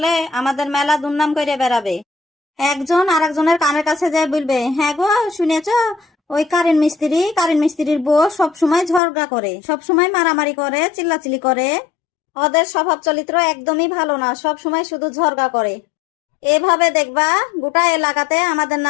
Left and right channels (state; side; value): drops out; right; at 9.0 s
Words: আমাদের মেলা দুর্নাম করে বেড়াবে। একজন আরেকজনের কানের কাছে যায় বলবে, হ্যাঁ গো শুনেছ, ওই কারেন্ট মিস্ত্রির বউ সব সময় ঝগড়া করে, সব সময় মারামারি করে, চিল্লাচিল্লি করে। ওদের স্বভাব চরিত্র একদমই ভালো না, সব সময় শুধু ঝগড়া করে। এভাবে দেখবা গোটা এলাকাতে আমাদের